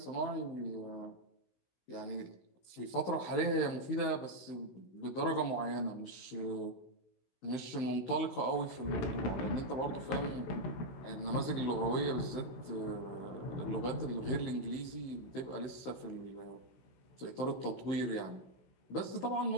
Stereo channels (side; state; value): right; late; 15 ms